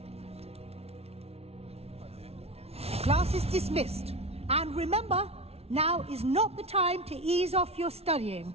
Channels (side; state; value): left; late; 0.30 ms